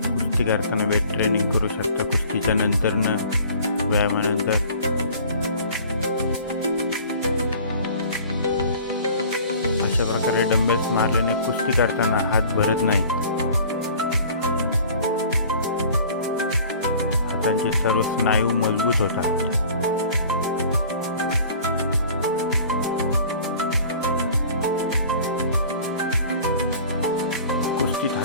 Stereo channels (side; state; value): both; inverted; correlation -0.47